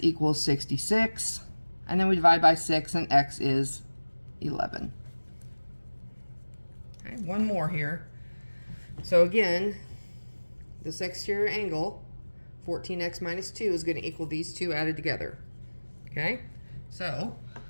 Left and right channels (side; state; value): both; inverted; correlation -1.00